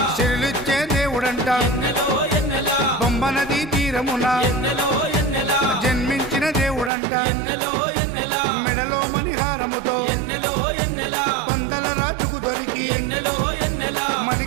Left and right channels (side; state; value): left; drops out; at 6.9 s